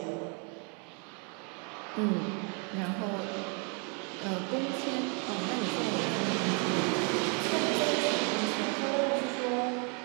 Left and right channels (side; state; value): left; quieter; 36.6 dB